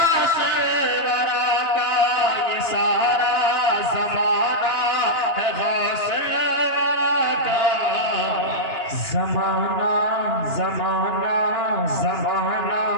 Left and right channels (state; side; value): late; right; 2.9 ms